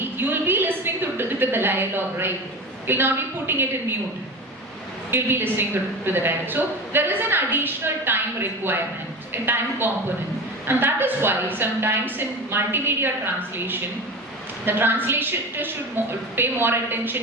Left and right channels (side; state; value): both; normal; correlation 0.29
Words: you will be listening to the dialogue, right? You'll not be putting it in mute. You'll be listening to the dialogue. So there is an additional time requirement, a time component. And that is why sometimes in multimedia translation, the translator should pay more